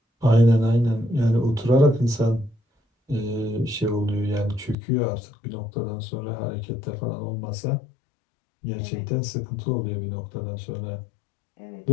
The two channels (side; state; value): right; drops out; at 4.8 s